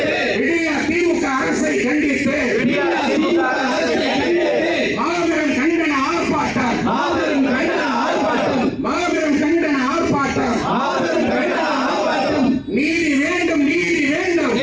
அரசை கண்டித்து மாபெரும் கண்டன ஆர்ப்பாட்டம், மாபெரும் கண்டன ஆர்ப்பாட்டம். நீதி வேண்டும், நீதி வேண்டும்,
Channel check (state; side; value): identical; both; correlation 1.00